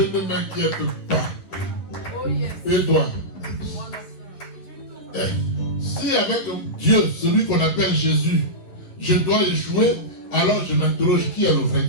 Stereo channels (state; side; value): late; right; 11 ms